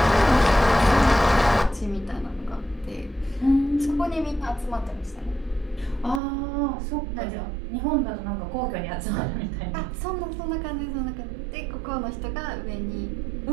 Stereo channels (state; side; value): drops out; left; at 6.2 s